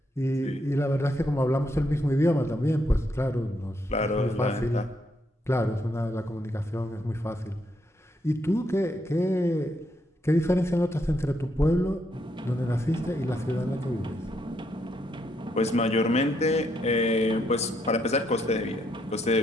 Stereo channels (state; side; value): normal; both; correlation 0.76